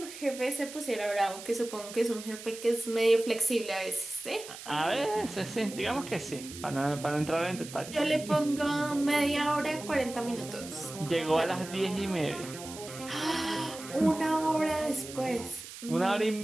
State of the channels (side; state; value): right; noise; hiss, 13 dB below the sound